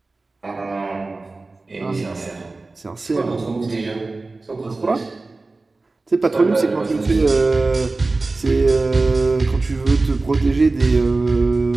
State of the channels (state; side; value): quieter; left; 3.4 dB